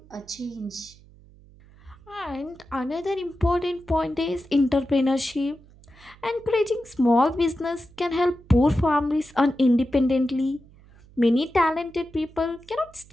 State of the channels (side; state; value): right; noise; hum, 25 dB below the sound